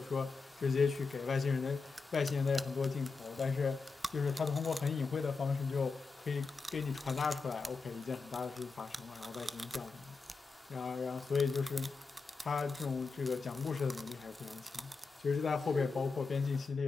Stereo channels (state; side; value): quieter; right; 4.5 dB